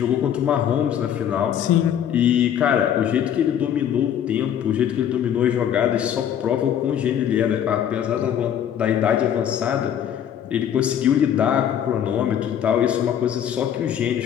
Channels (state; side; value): quieter; right; 9.5 dB